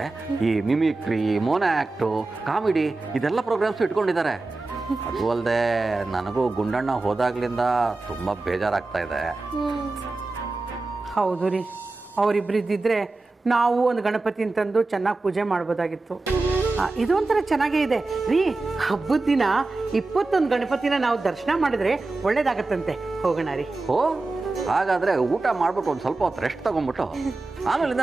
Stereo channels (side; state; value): left; quieter; 3.4 dB